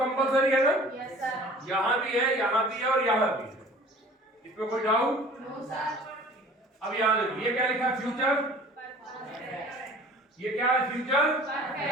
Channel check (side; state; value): both; normal; correlation 0.47